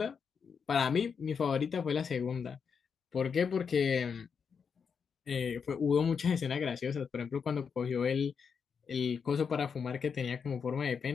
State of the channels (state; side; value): quieter; right; 6.3 dB